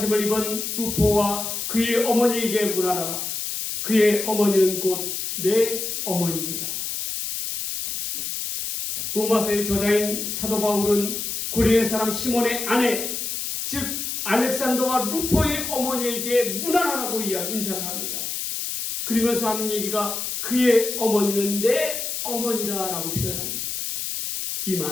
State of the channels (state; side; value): noise; left; hiss, 4 dB below the sound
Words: 입은 루포와 그의 어머니에게 문안하라. 그의 어머니는 곧 내 어머니니라. 로마서의 저자인 사도 바울은 구린의 사람 시몬의 아내, 즉 알렉산더와 루포의 어머니에게 문안하라고 인사를 합니다. 그러면서 하는 얘기가 그의 어머니는 내 어머니라 라고 표현합니다. 이